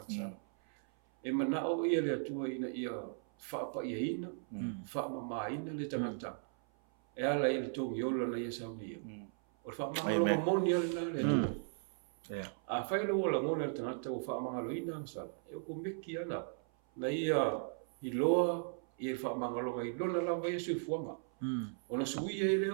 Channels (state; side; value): silent; left; 53 dB below the other